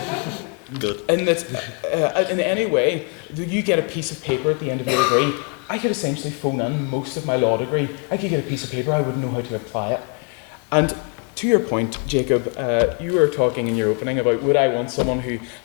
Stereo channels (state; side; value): quieter; right; 38.1 dB